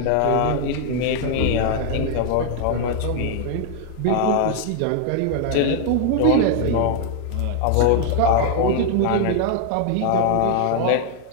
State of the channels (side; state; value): both; different; correlation 0.00